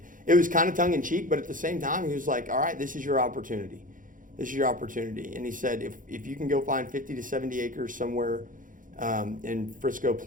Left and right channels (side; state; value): left; late; 0.39 ms